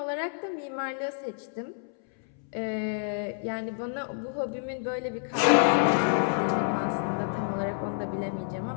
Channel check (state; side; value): silent; right; 59 dB below the other